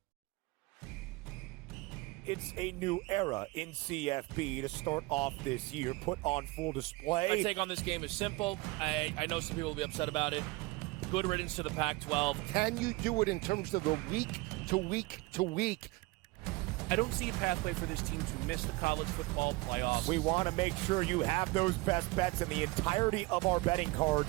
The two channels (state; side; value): quieter; left; 22.7 dB